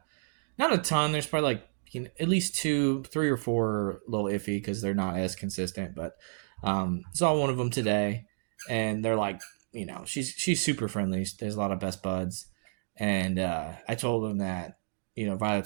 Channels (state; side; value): silent; left; digital silence